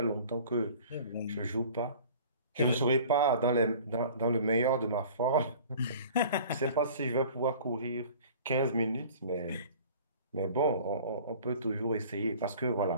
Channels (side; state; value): both; inverted; correlation -0.46